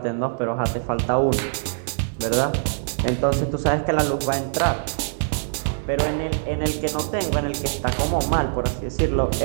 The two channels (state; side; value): silent; left; 62 dB below the other